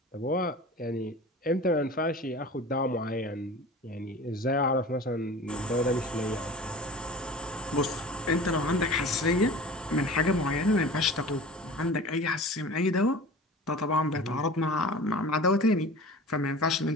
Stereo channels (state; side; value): normal; both; correlation 0.38